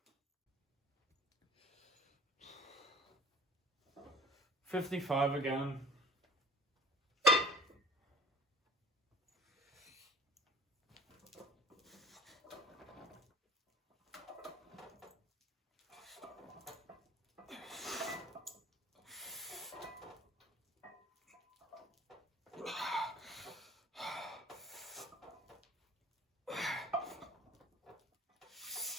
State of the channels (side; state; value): both; normal; correlation 0.47